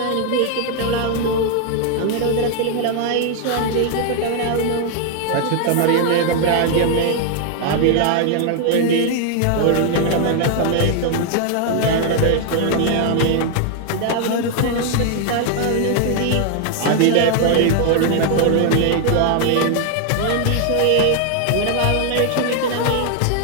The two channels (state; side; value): different; both; correlation 0.00